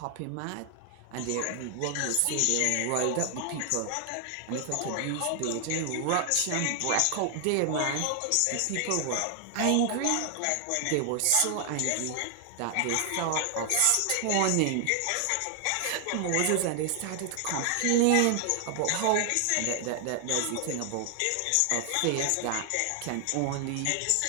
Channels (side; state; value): both; different; correlation 0.00